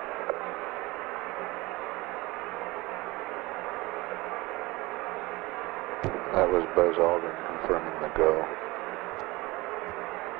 That was Buzz Aldrin confirming the go.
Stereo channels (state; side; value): quieter; left; 21.8 dB